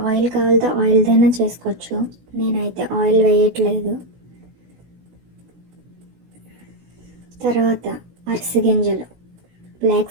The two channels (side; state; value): left; late; 16 ms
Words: ఆయిల్ కావాలితే ఆయిల్దైనా చేసుకోవచ్చు, నేనైతే ఆయిల్ వేయట్లేదు. తర్వాత అరిసి గింజలు, బ్లాక్